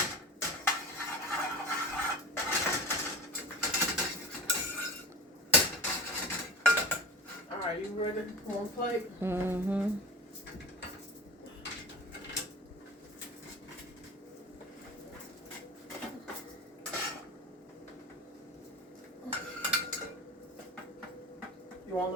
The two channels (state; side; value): normal; both; correlation 0.33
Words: Alright, you ready? One plate? Mm-hmm. You want a